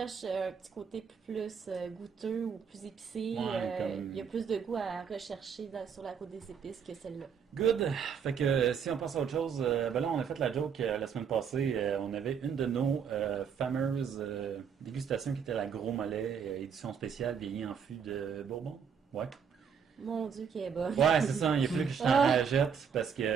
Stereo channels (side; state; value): left; quieter; 7.0 dB